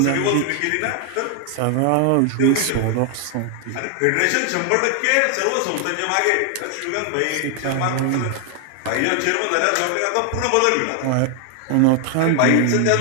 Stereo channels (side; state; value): both; different; correlation 0.00